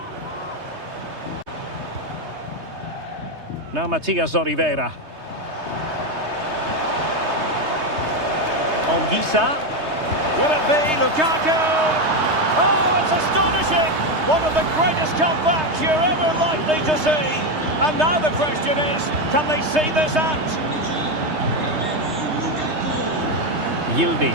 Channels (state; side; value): late; left; 3.2 ms